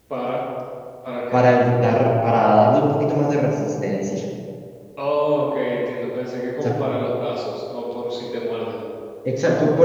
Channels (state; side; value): identical; both; correlation 1.00